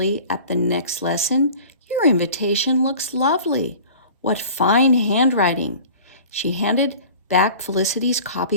at the next lesson, "your invitation looks lovely. What fine handwriting." She handed back Felicity's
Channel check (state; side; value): inverted; both; correlation -0.43